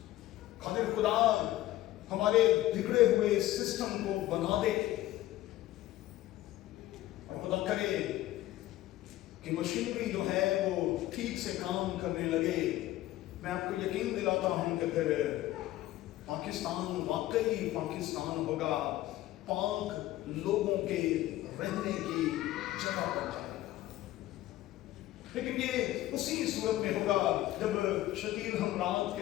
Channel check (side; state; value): right; quieter; 15.4 dB